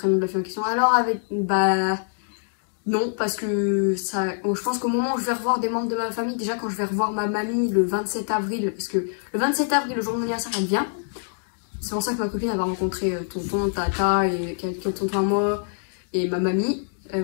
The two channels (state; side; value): silent; right; digital silence